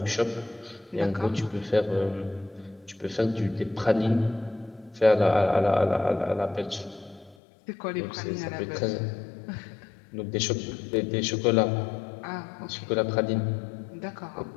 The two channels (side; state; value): right; drops out; at 7.4 s